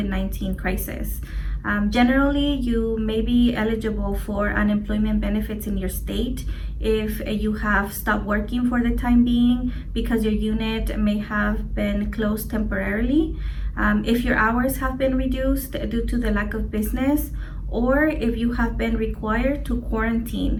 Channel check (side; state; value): both; identical; correlation 1.00